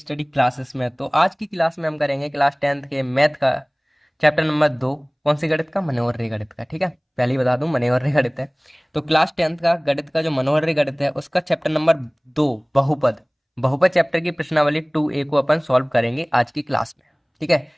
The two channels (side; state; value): both; identical; correlation 1.00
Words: क्लासेस में। तो आज की क्लास में हम करेंगे क्लास 10th के मैथ का चैप्टर नंबर 2। कौन सी गणित का? मनोहर्री गणित का। ठीक है, पहले ही बता दूं मनोहर्री गणित है। तो क्लास 10th का गणित का जो मनोहर्री गणित है उसका चैप्टर नंबर 2 बहुपद। बहुपद चैप्टर की प्रश्नावली 2A को अपन सॉल्व करेंगे आज की क्लास में। ठीक है,